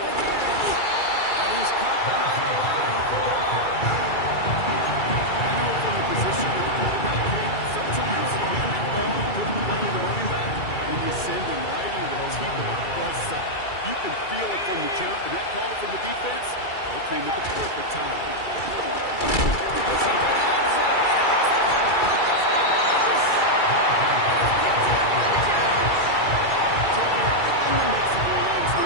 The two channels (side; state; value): right; late; 2.3 ms